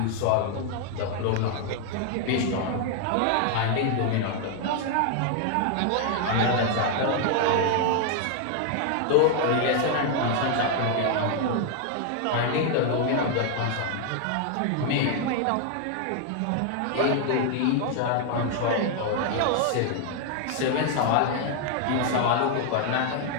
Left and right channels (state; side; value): different; both; correlation 0.00